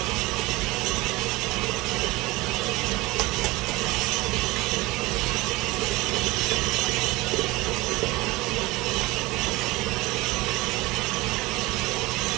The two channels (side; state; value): left; quieter; 21.0 dB